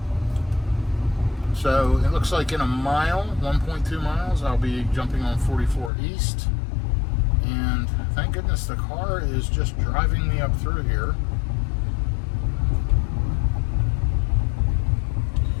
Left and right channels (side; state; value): right; drops out; at 5.9 s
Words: So it looks like in a mile, 1.2 miles, I'll be jumping on 44 East. And thank goodness the car is just driving me up through here.